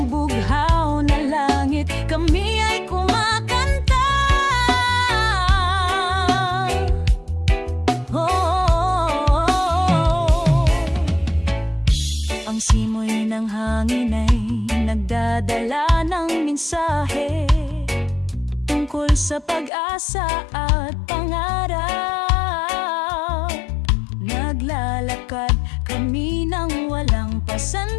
bughaw na langit kami ay kumakanta. Ang simoy ng hangin ay nagdadala ng mensahe tungkol sa pag-asa at pangarap. Naglalakad kami ng walang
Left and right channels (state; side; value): drops out; right; at 19.7 s